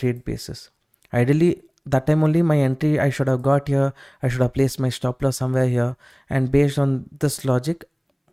basis. Ideally, that time only my entry I should have got here, I should have placed my stop loss somewhere here, and based on this logic,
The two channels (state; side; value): identical; both; correlation 1.00